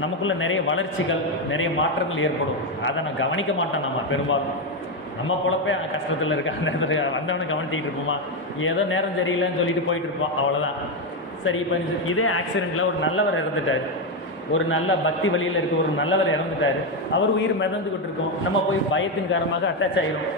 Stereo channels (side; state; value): both; normal; correlation 0.08